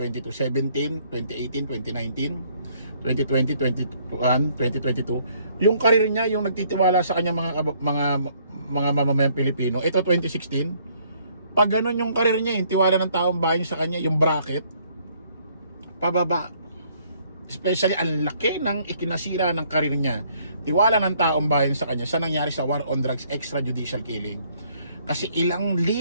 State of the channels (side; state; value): both; inverted; correlation -0.64